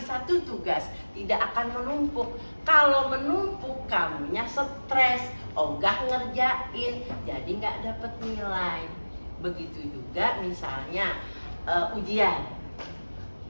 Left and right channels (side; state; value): both; inverted; correlation -1.00